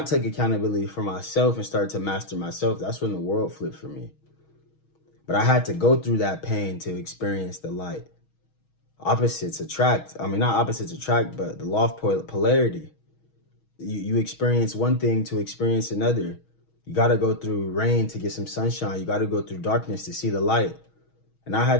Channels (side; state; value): right; late; 6.3 ms